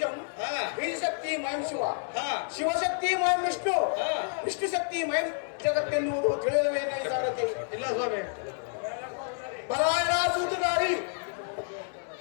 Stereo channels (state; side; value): silent; right; 58 dB below the other